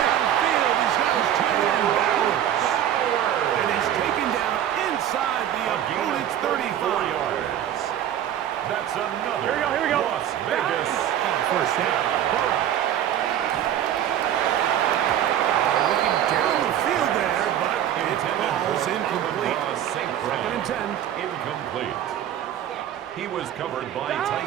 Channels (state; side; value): quieter; left; 10.8 dB